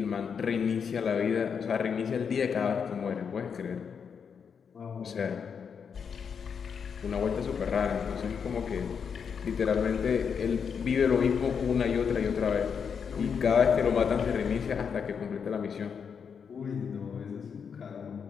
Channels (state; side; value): quieter; right; 6.6 dB